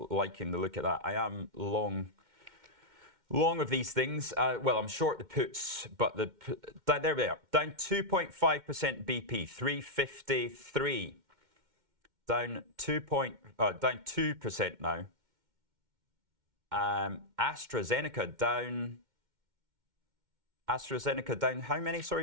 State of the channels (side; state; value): left; late; 2.1 ms